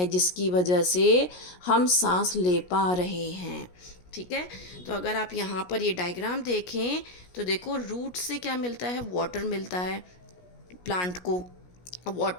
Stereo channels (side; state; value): right; late; 17 ms